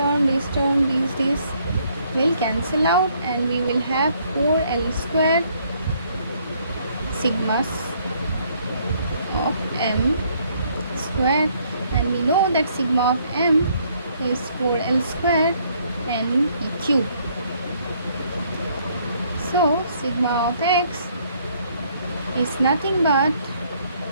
will cancel out, and we will have 4l square sigmas of m square, and we know that sigma of m is 4l square n p cube. So sigma of x is nothing but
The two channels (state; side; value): inverted; both; correlation -0.66